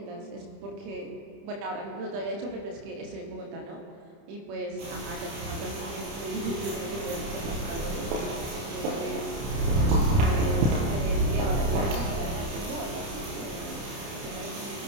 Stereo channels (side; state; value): left; late; 30 ms